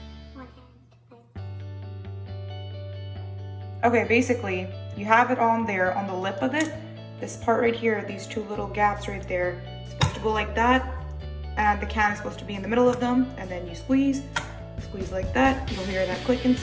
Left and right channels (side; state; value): both; identical; correlation 1.00